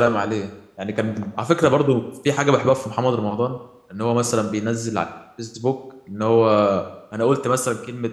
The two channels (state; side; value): identical; both; correlation 1.00